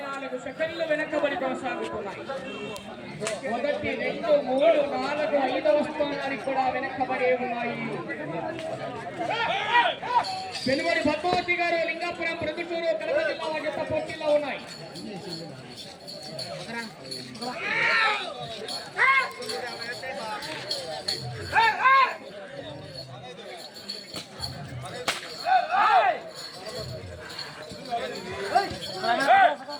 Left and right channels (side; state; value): both; identical; correlation 1.00